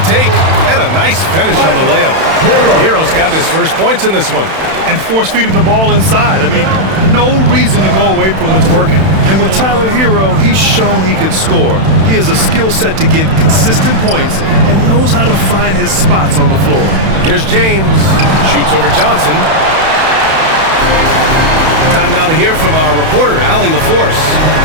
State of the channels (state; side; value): late; left; 31 ms